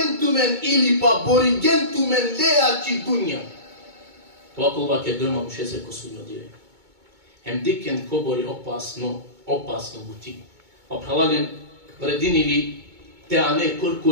tumen ili pa borigen tumen lea ki dunja. To ako va ke dojma mušese ko sudnjo dive. Hem diken kobori opasno buti. Pa pralanen vredinili te ane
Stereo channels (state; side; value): late; left; 2.2 ms